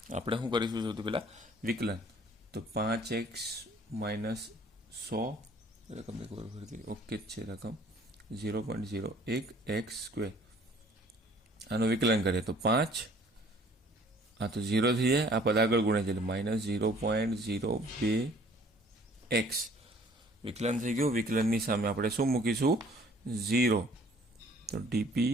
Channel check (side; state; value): both; normal; correlation 0.55